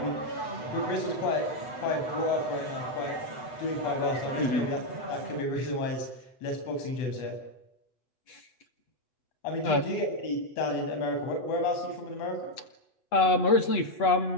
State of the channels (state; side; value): late; right; 8.0 ms